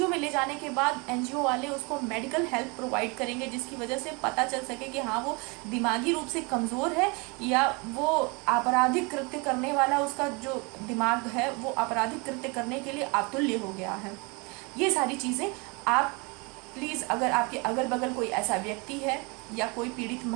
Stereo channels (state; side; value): quieter; left; 29.6 dB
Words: में ले जाने के बाद एनजीओ वाले उसको मेडिकल हेल्प प्रोवाइड करेंगे, जिसकी वजह से पता चल सके कि हाँ वो दिमागी रूप से कमज़ोर है या वो आपराधिक कृत्य करने वाला, उसका जो दिमाग है वो आपराधिक कृत्य करने के लिए अतुल्य हो गया है। ये सारी चीज़ें आप प्लीज़, अगर आपके अगल बगल कोई ऐसा व्यक्ति है या कोई पीड़ित